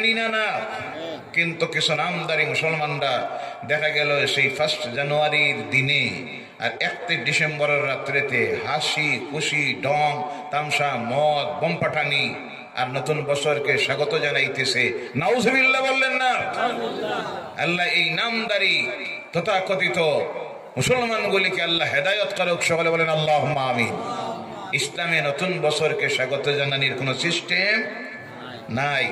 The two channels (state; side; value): identical; both; correlation 1.00